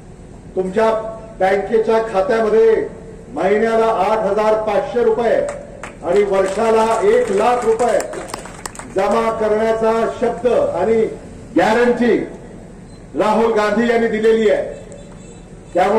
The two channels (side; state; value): both; identical; correlation 1.00